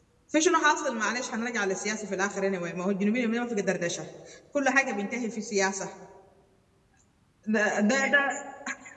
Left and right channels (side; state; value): both; identical; correlation 1.00